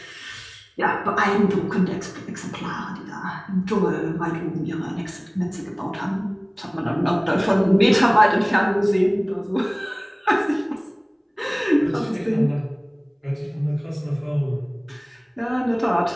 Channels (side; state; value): both; identical; correlation 1.00